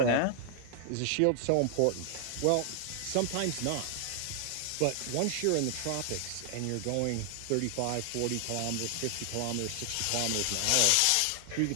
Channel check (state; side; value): different; both; correlation 0.00